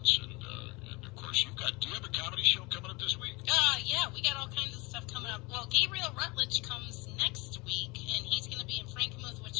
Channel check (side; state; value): right; quieter; 25.4 dB